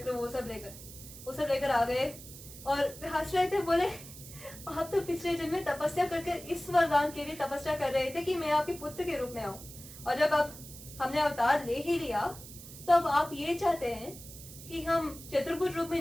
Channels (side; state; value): right; noise; hiss, 15 dB below the sound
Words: वो सब लेकर आ गए। और हंस रहे थे, बोले आप तो पिछले जन्म में तपस्या करके इस वरदान के लिए तपस्या कर रहे थे कि मैं आपके पुत्र के रूप में आऊं, और जब अब हमने अवतार ले ही लिया तो अब आप ये चाहते हैं कि हम चतुर्भुज रूप में